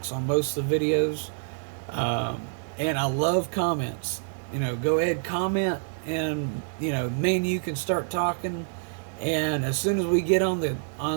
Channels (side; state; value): left; silent; digital silence